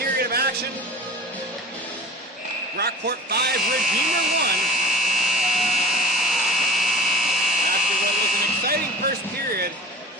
of action. Brockport 5, Redeemer 1. After what was an exciting first period,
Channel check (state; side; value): normal; both; correlation 0.39